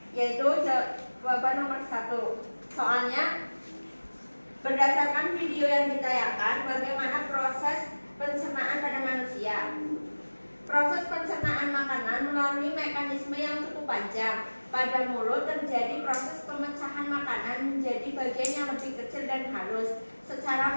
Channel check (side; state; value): both; inverted; correlation -1.00